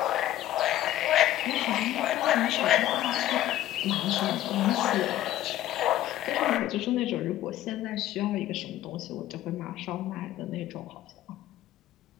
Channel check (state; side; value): quieter; right; 13.6 dB